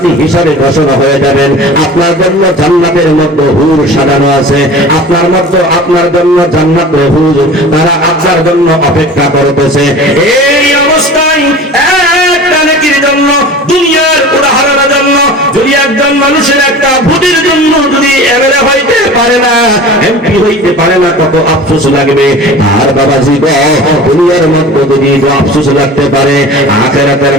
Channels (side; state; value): both; normal; correlation 0.39